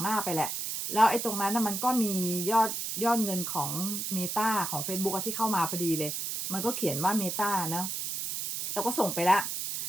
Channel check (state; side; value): noise; right; hiss, 3 dB below the sound